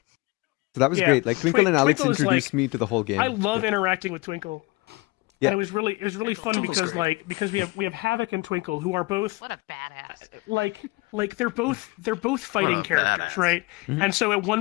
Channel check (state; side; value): quieter; right; 24.4 dB